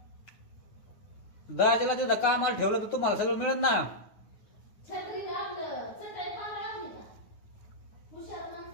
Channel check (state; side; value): late; right; 9.5 ms